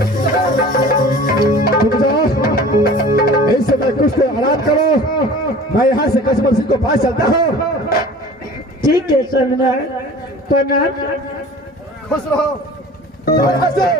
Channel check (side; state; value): both; normal; correlation 0.43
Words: तुम जाओ, इस समय कुछ तो आराम करो, मैं यहाँ से कचमल सिंह को पास चलता हूँ। ठीक है सबना, प्रणाम। खुश रहो, जाओ यहाँ से।